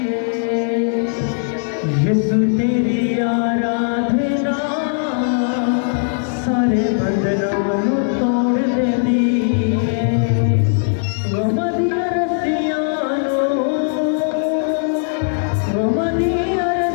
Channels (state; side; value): silent; right; digital silence